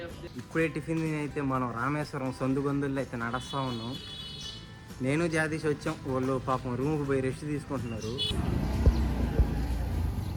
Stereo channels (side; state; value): both; identical; correlation 1.00